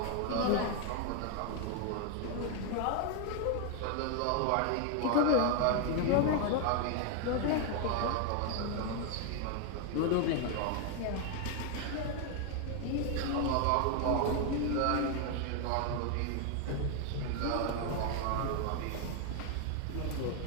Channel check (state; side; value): different; both; correlation 0.01